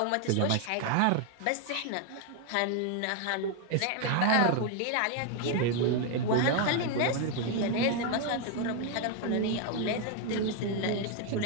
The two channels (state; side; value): different; both; correlation 0.01